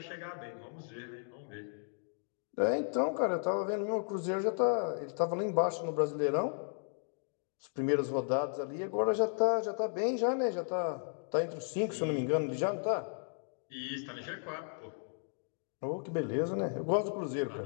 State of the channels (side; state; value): right; silent; 55 dB below the other